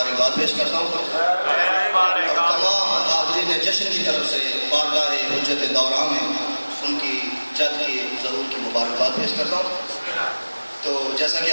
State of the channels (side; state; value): both; inverted; correlation -1.00